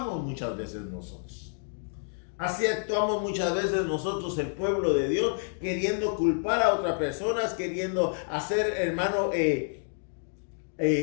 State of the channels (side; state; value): right; silent; digital silence